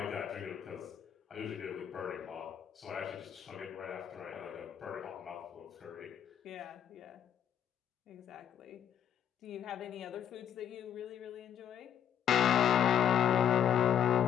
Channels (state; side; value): quieter; right; 9.5 dB